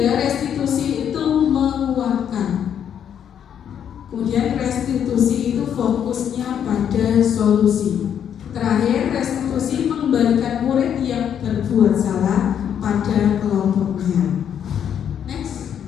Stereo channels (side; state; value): right; quieter; 8.9 dB